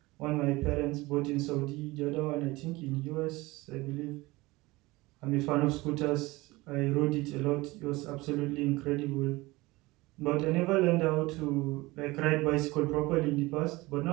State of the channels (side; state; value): left; quieter; 21.2 dB